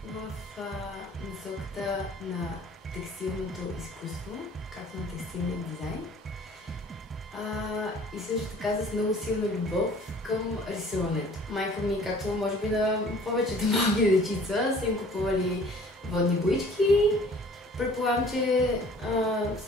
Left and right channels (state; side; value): normal; both; correlation 0.51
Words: в насоката на текстилното изкуство, както на текстилния дизайн. И също така с много силна любов към рисуването. Майка ми, както може би на повечето малки дечица, са им купували водни боички. Предполагам, че